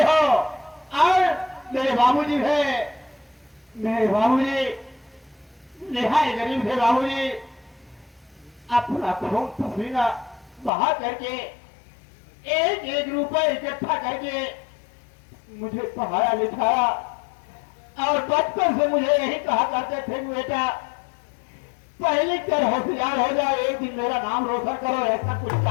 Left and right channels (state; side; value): drops out; right; at 10.7 s